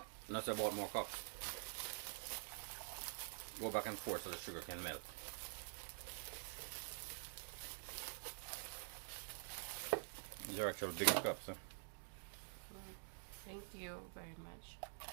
Unless I bought more cups. Go back and forth so the sugar can melt. These are actually bigger cups, huh? Thank you very much.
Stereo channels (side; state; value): left; silent; digital silence